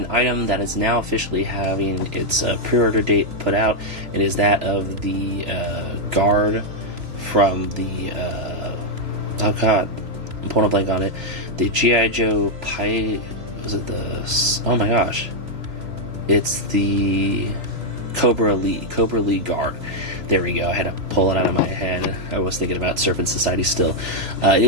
item that is now officially having its pre-order date put out. It is that of the guard from the oh god, I'm pulling a blank on it, the G.I. Joe oh my gosh, it's the Cobra Lee guard. There we go. I had to pull it out of my head. I was thinking about Serpent Society still. It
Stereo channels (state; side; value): late; left; 3.0 ms